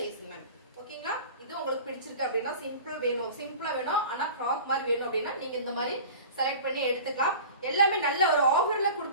மேம். ஓகேங்களா, இது உங்களுக்கு பிடிச்சிருக்கு அப்படின்னா சிம்பிள் வேணும், சிம்பிளா வேணும் ஆனா ஃப்ராக் மாதிரி வேணும் அப்படின்னா நீங்க இந்த மாதிரி செலக்ட் பண்ணி எடுத்துக்கலாம். எல்லாமே நல்ல ஒரு ஆஃபர்ல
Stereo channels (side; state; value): both; inverted; correlation -0.39